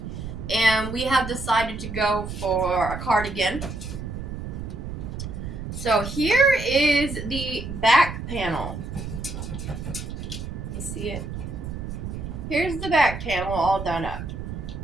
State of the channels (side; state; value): right; noise; rumble, 7 dB below the sound